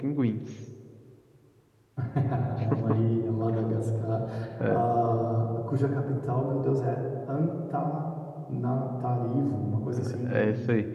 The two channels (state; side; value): identical; both; correlation 1.00